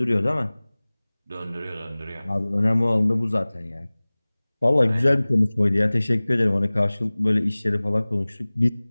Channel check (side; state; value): both; inverted; correlation -1.00